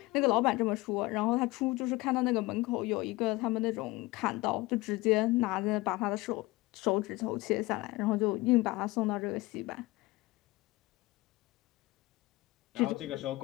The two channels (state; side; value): quieter; right; 20.7 dB